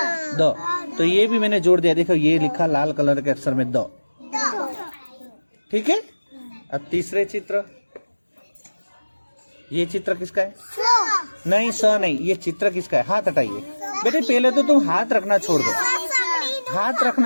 दो। तो ये भी मैंने जोड़ दिया, देखो ये लिखा लाल कलर के अक्षर में दो, ठीक है। अब तीसरे चित्र, ये चित्र किसका है? नहीं, स नहीं, ये चित्र किसका है? हाथ हटाइए बेटे, पहले तो तुम हाथ रखना छोड़ दो, हाथ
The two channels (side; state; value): both; inverted; correlation -1.00